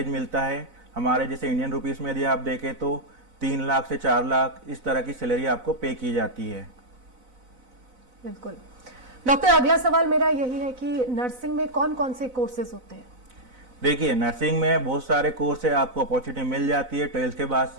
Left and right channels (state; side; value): late; left; 4.0 ms